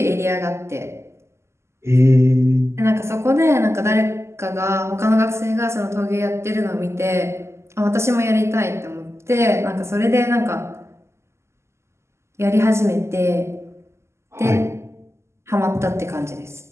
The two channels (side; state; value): left; late; 0.13 ms